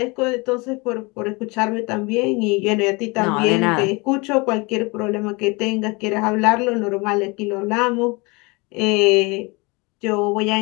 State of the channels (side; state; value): right; quieter; 27.1 dB